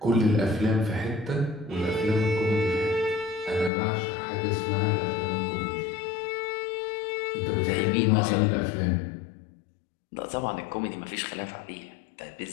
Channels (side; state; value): right; drops out; at 3.7 s